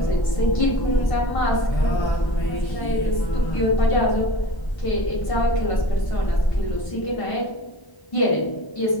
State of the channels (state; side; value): late; right; 1.0 ms